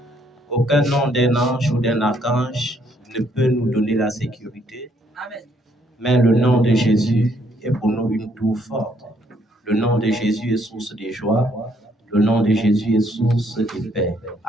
aucun nom d'un ange ou d'un archange ne peut nous donner la sécurité. Amen. Mais le nom de Jésus est pour nous une tour forte. Le nom de Jésus est source de joie. Le nom de Jésus est source de paix.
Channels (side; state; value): both; normal; correlation 0.69